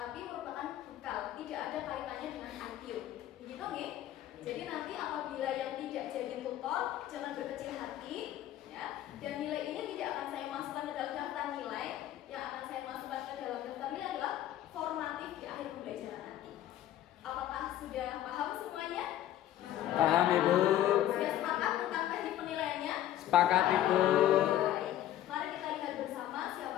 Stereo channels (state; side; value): quieter; right; 12.6 dB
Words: merupakan bekal, tidak ada kaitannya dengan IQ. Begitu nih. Jadi nanti apabila yang tidak jadi tutor jangan berkecil hati ya. Dan nilai ini tidak akan saya masukkan ke dalam daftar nilai. Yang akan saya masukkan ke dalam daftar nilai adalah formatif di akhir pembelajaran nanti. Apakah sudah paham semuanya? Paham Ibu. Sudah sepakat tentang teknik penilaiannya? Sepakat Ibu. Baik. Mari kita lihat bersama